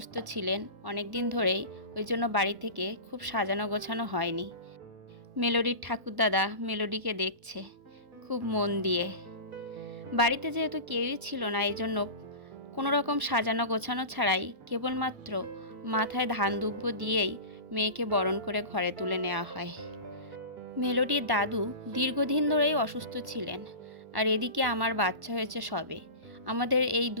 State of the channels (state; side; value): late; left; 1.0 ms